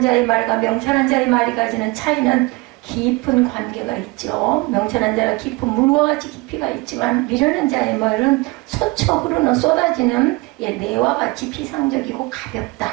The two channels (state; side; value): quieter; left; 24.3 dB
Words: 자의 말과 명철한 자의 말이 가지는 차이는 깊은 관계가 있죠. 명철한 자가 깊은 물과 같이 깊이가 있지만 미련한 자의 말은 솟쳐 흐르는 쏟아지는 내와 같이 피상적이고 가볍다.